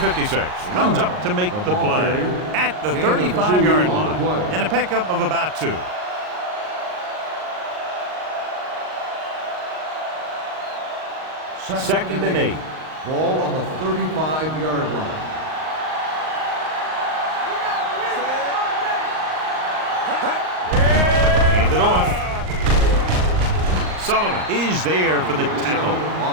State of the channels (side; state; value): left; late; 38 ms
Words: comes up to make the play at the 35-yard line. And a pickup of about 2. Second and 8. Ball on the 35-yard line. Hand it off. Sullivan is there for the tackle